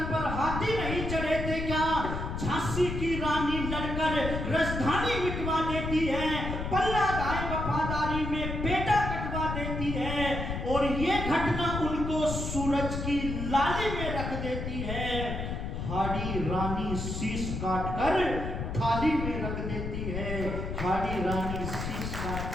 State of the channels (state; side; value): noise; left; rumble, 4 dB below the sound